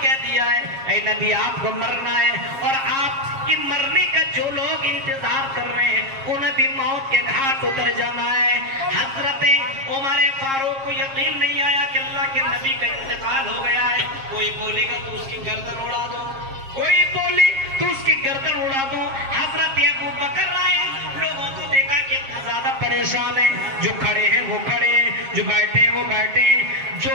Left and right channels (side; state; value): left; late; 7.4 ms